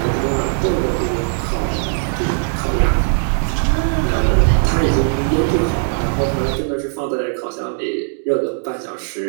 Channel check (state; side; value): silent; left; 66 dB below the other